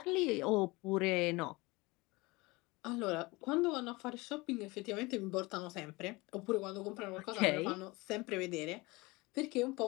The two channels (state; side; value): quieter; right; 23.4 dB